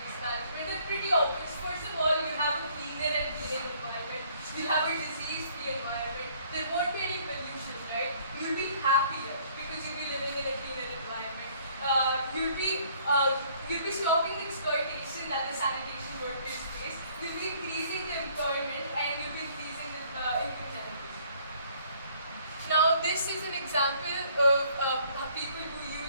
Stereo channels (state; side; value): inverted; both; correlation -0.61